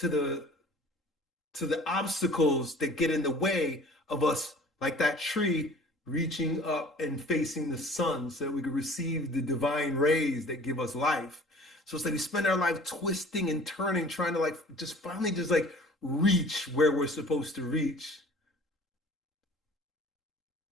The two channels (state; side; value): normal; both; correlation 0.48